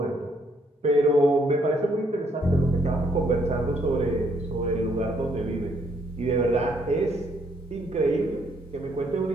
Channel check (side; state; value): both; normal; correlation 0.69